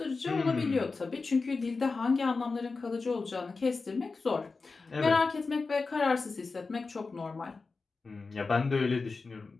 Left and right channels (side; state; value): right; quieter; 4.1 dB